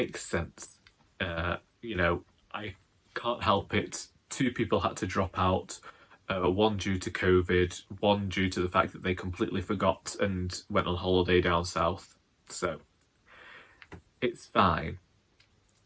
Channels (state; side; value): identical; both; correlation 1.00